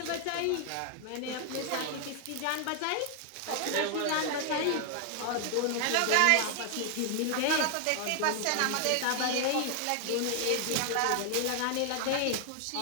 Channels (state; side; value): different; both; correlation 0.00